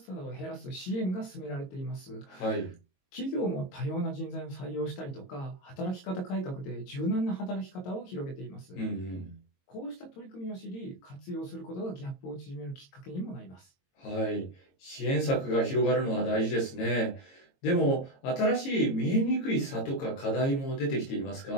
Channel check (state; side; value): late; right; 22 ms